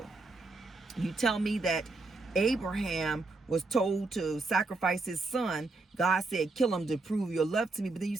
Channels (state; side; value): quieter; left; 3.4 dB